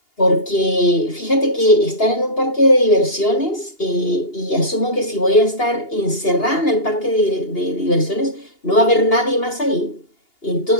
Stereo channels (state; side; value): late; right; 2.8 ms